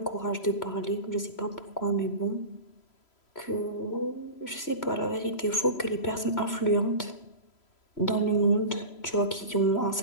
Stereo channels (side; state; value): right; late; 3.0 ms